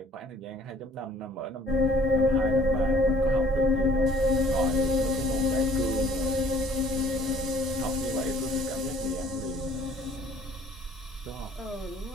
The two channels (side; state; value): both; normal; correlation 0.55